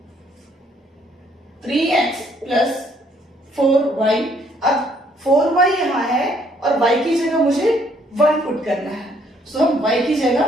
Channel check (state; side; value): normal; both; correlation 0.66